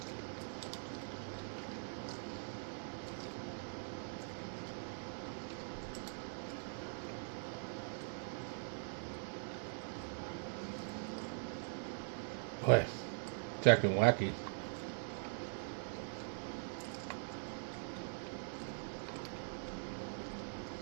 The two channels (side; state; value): left; silent; digital silence